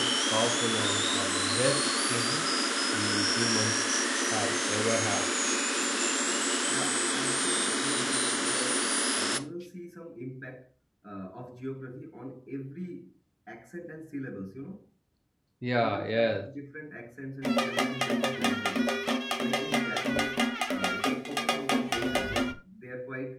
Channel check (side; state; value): both; identical; correlation 1.00